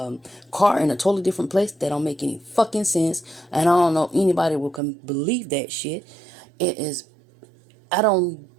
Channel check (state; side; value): drops out; left; at 4.8 s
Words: car in a totally different place, that don't make any fucking sense. And I don't know if anybody will believe that shit. It is... I don't